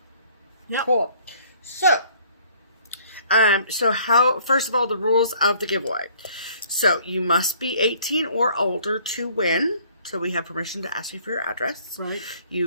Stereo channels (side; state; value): both; inverted; correlation -0.57